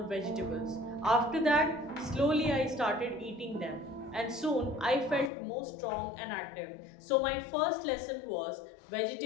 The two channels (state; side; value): drops out; right; at 5.3 s